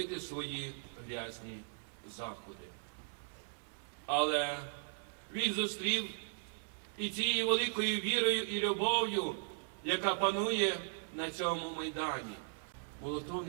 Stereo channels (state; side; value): silent; left; digital silence